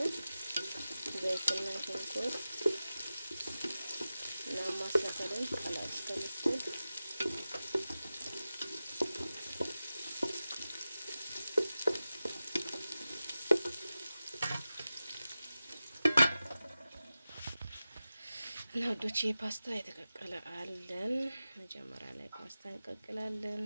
ዘይትና ሽንኩርት እና ማስላፈለን ቀላል እስከምትል እና ወዶቼ ፓስታ የተቀቀለ አለን። መጀመሪያ ላይ ፓስታ እንቀቅላለን።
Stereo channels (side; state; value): both; inverted; correlation -0.94